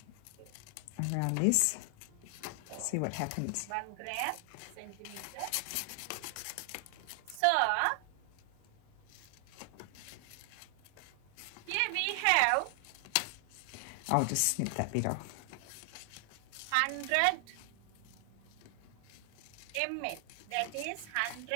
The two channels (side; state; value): both; different; correlation 0.00